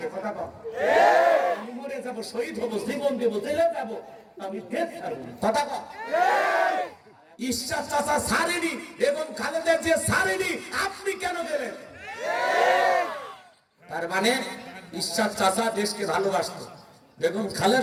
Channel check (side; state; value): both; identical; correlation 1.00